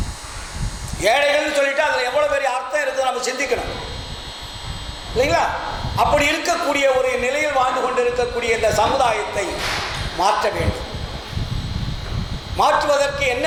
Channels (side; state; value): both; identical; correlation 1.00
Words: ஏழைகள்னு சொல்லிட்டு அதில் எவ்வளோ பெரிய அர்த்தம் இருக்குது நம்ம சிந்திக்கணும் இல்லைங்களா? அப்படி இருக்கக்கூடிய ஒரு நிலையில் வாழ்ந்து கொண்டு இருக்கக்கூடிய இந்த சமுதாயத்தை மாற்ற வேண்டும். மாற்றுவதற்கு என்ன